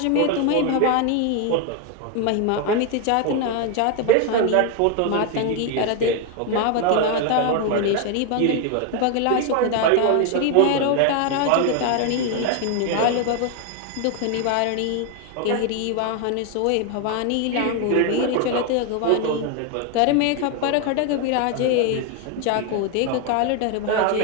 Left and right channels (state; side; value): different; both; correlation 0.01